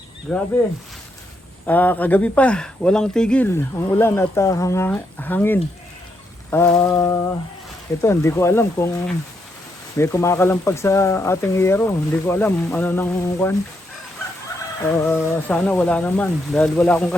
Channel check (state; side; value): normal; both; correlation 0.79